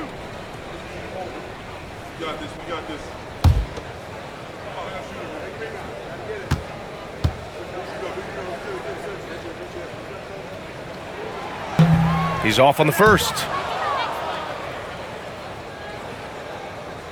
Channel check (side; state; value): both; identical; correlation 1.00